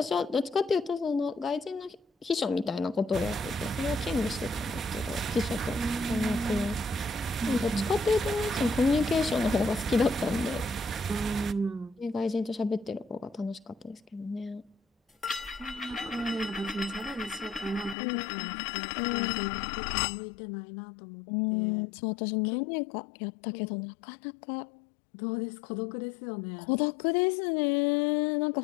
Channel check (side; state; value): right; drops out; at 17.9 s